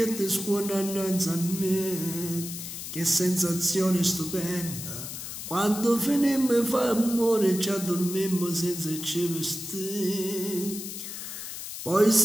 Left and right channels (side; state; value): left; noise; hiss, 8 dB below the sound